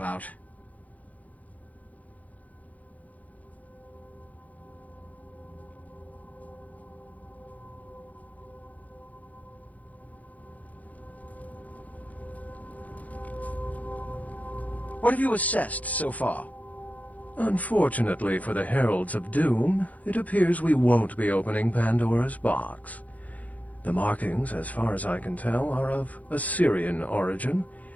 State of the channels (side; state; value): right; late; 0.075 ms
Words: What have you assessed so far? Unfortunately for the Heralds of Doom, it appears we won't be opening Pandora's box. The markings, as far as I can tell, are of Assyrian origin.